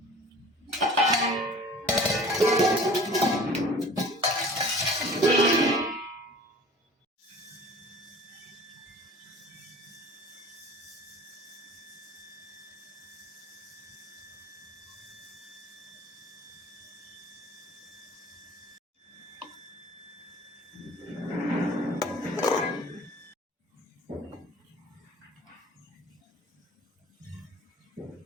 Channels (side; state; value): both; normal; correlation 0.45